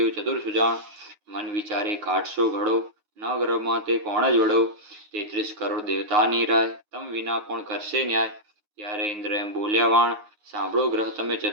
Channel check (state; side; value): late; left; 9.6 ms